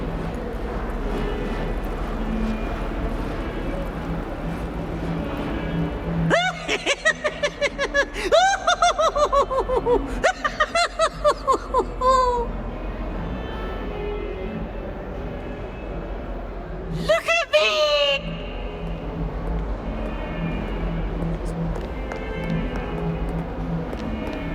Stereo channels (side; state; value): both; identical; correlation 1.00